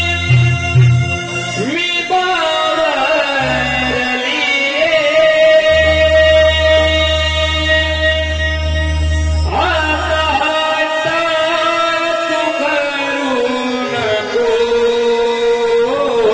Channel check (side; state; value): both; identical; correlation 1.00